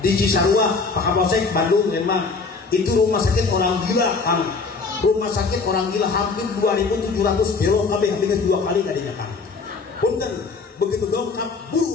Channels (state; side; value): quieter; right; 4.5 dB